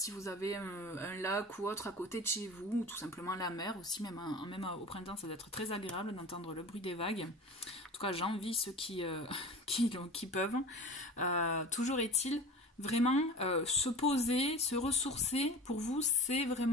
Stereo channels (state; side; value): normal; both; correlation 0.36